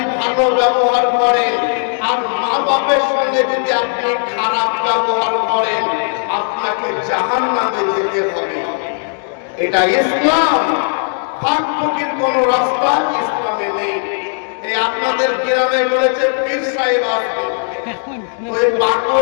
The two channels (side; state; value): right; silent; 58 dB below the other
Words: ভালো ব্যবহার করেন, আর মা বাপের সঙ্গে যদি আপনি খারাপ ব্যবহার করেন, আপনাকে জাহান্নামে যেতে হবে। এটা ইসলাম, ফাঁক ফকির কোন রাস্তা ইসলামে নেই। এই আপনাদের গ্রামে বলেছে পীর সাহেব আসবে, ওই